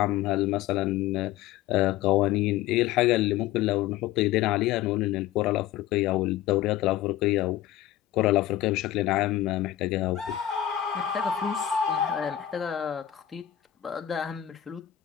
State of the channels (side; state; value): right; quieter; 12.7 dB